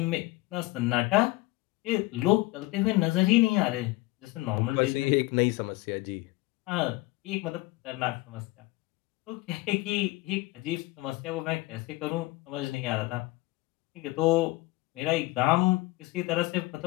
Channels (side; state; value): right; quieter; 20.3 dB